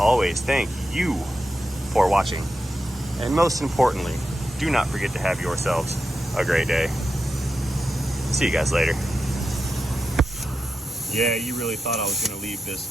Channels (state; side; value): normal; both; correlation 0.89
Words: thank you for watching. And most importantly, do not forget to have yourselves a great day. See you guys later. Yeah, you really thought I was going to leave